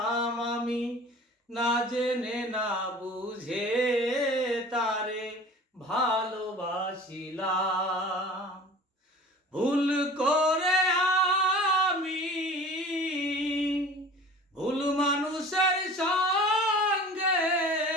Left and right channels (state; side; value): normal; both; correlation 0.42